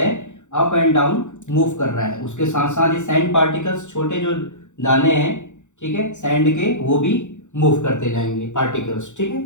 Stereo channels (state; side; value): late; right; 0.85 ms